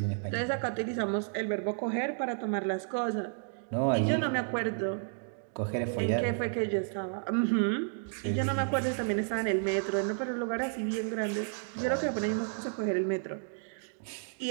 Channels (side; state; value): left; silent; digital silence